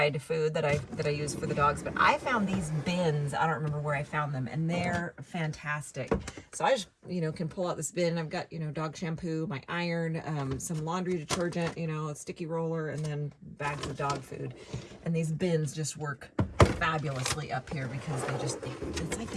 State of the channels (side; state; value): both; identical; correlation 1.00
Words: food that I use for the dogs. But I found these bins. I don't remember where I found them, and they're fantastic. So I just, can pull out this bin. I've got, dog shampoo, my iron, some laundry detergent, a sticky roller, and then bags of dog food. And these bins just work fabulously up here because it's like